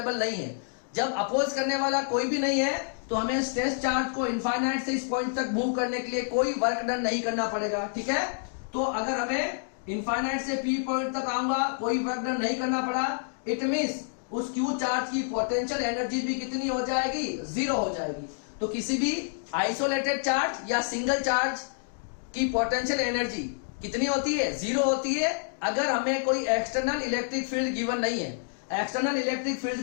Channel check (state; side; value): silent; right; digital silence